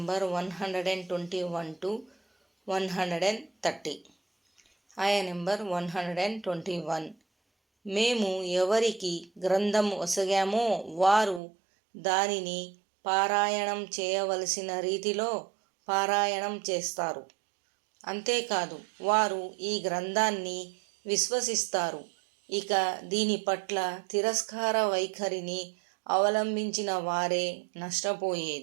121 to 130. ఆయా నెంబర్ 121. మేము ఎవరికి గ్రంథం ఒసగామో వారు దానిని పారాయణం చేయవలసిన రీతిలో పారాయణం చేస్తారు. అంతేకాదు వారు ఈ గ్రంథాన్ని విశ్వసిస్తారు. ఇక దీని పట్ల తిరస్కార వైఖరిని అవలంబించిన వారే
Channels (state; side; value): drops out; left; at 11.4 s